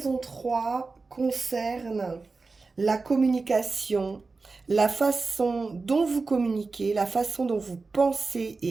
3 concerne la communication, la façon dont vous communiquez, la façon dont vous pensez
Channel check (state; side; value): quieter; left; 4.0 dB